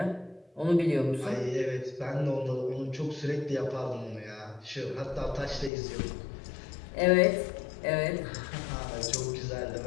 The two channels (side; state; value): right; drops out; at 5.7 s